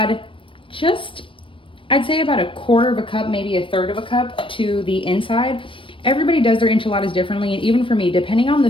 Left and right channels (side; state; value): right; late; 0.25 ms